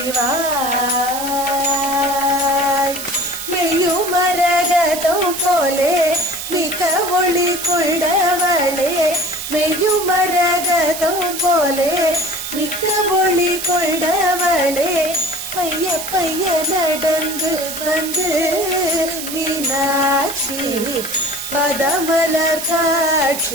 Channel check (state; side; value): noise; right; hiss, 7 dB below the sound